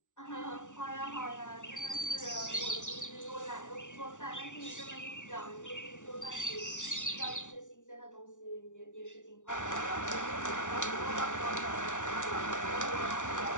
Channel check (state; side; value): late; right; 0.86 ms